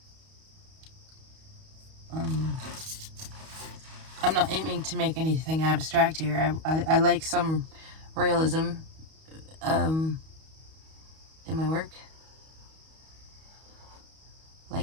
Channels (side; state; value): left; late; 31 ms